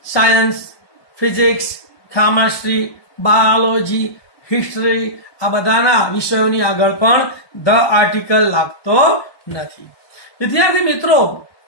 science, physics, chemistry, biology, history આ બધાના વિષયોની આગળ પણ ધ આર્ટિકલ લાગતો નથી. વિદ્યાર્થી મિત્રો,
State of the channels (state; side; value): late; right; 1.2 ms